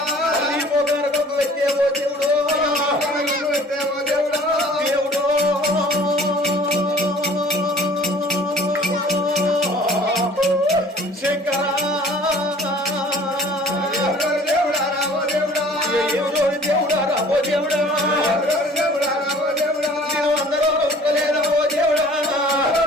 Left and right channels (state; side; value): normal; both; correlation 0.50